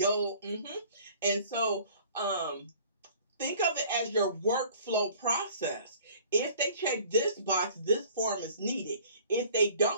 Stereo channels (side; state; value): both; inverted; correlation -0.50